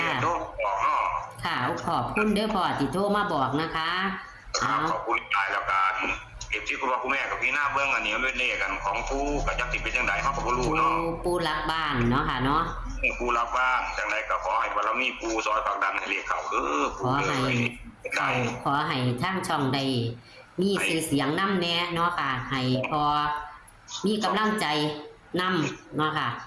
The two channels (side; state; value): both; identical; correlation 1.00